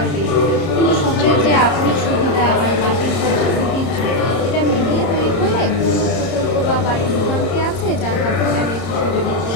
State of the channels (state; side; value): late; right; 30 ms